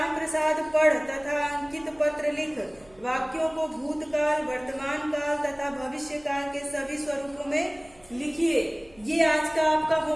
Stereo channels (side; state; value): right; noise; hum, 28 dB below the sound